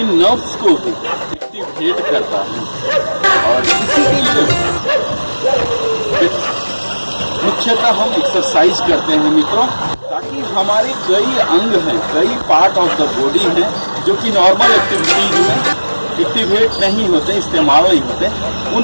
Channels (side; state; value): both; inverted; correlation -1.00